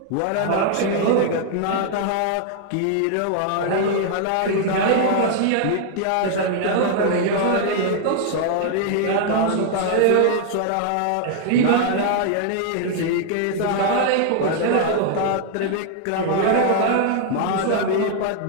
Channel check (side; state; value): both; different; correlation 0.00